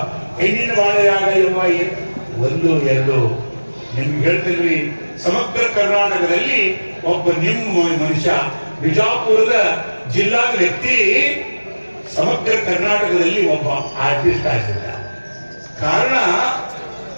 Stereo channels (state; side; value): inverted; both; correlation -1.00